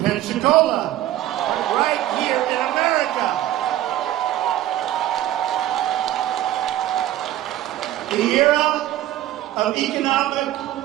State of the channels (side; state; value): left; quieter; 13.7 dB